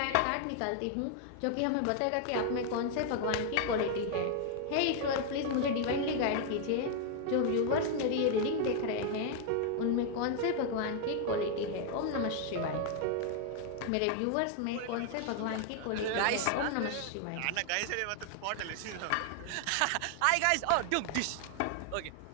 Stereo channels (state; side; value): different; both; correlation 0.00